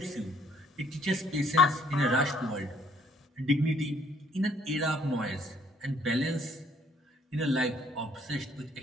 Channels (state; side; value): normal; both; correlation 0.63